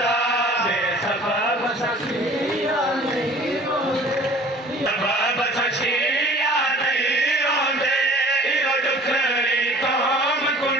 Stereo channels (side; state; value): both; normal; correlation 0.47